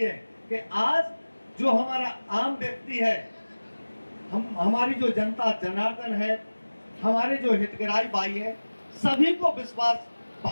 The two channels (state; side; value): inverted; both; correlation -1.00